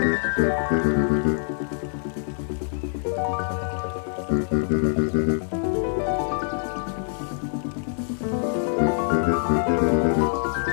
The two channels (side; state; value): right; silent; digital silence